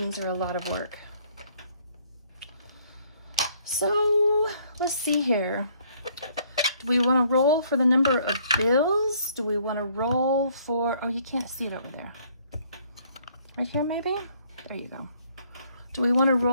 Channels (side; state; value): both; inverted; correlation -0.64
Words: are a lot of work. So let's see here. Do we want to roll for the number of bills? Do we want to roll for, oh, you can't see it over there. Right here, maybe? There you go. Do we want to